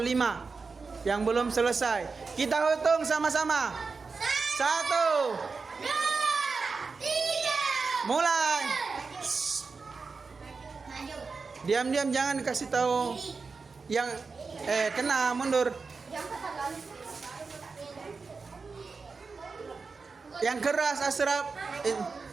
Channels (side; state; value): left; quieter; 4.6 dB